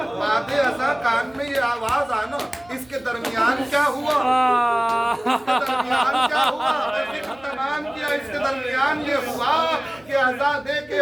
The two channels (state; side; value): noise; right; hum, 28 dB below the sound